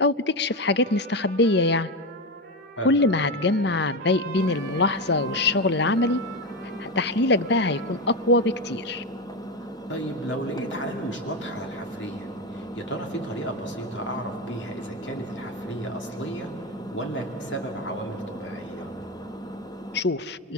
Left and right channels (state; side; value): normal; both; correlation 0.14